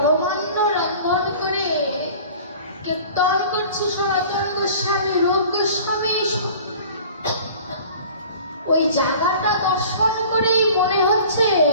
রন্ধন করে কীর্তন করছে সনাতন গোস্বামী, রূপ গোস্বামী ওই জায়গাটা দর্শন করে মনে হচ্ছে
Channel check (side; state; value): both; inverted; correlation -0.45